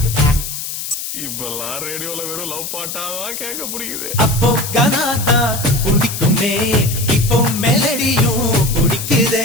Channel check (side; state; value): left; noise; hiss, 6 dB below the sound